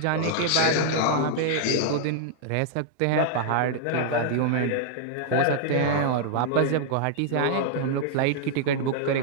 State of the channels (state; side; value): different; both; correlation -0.01